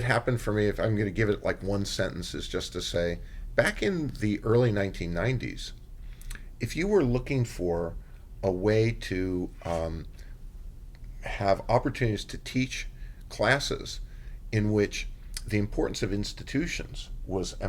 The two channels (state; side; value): identical; both; correlation 1.00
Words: happened for me, if I'm going to give it like one sentence, is just to say, back in the early 1990s, if you were looking for a way to have opportunities to teach classes in which the importance of institutions was